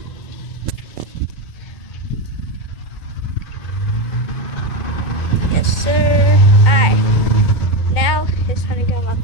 Yes, sir. Alright. Now it's time to get on my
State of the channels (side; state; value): right; late; 2.1 ms